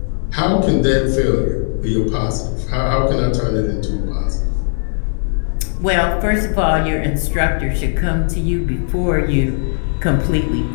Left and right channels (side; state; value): right; silent; digital silence